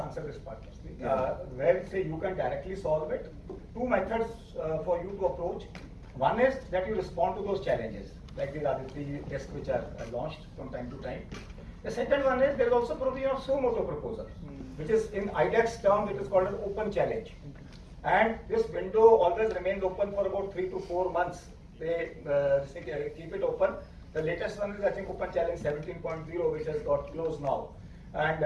answer this part firstly. Yeah. Where say you can directly solve it, two methods for you to approach. One is that you respond to those challenges, like the ADG tests which are launched from time to time. The second one is there is also provision of suo motu proposal, which is in IDEX term, it is called an open challenge. And this window always remains open for about 3 to 4 months. They keep it open. The latest one is, I think, Open Challenge 17.0, which has got closed now. And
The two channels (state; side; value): identical; both; correlation 1.00